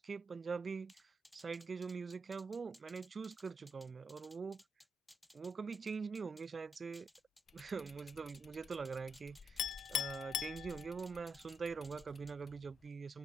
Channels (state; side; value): normal; both; correlation 0.81